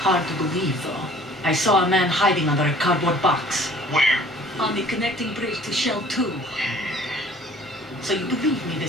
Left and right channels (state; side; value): normal; both; correlation 0.52